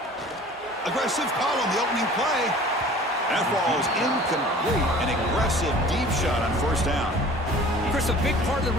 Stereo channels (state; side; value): normal; both; correlation 0.46